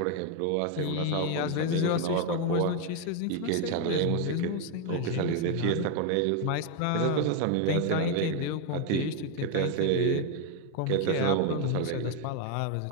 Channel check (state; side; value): different; both; correlation 0.01